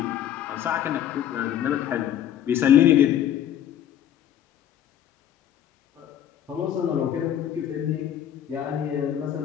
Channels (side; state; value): right; quieter; 10.4 dB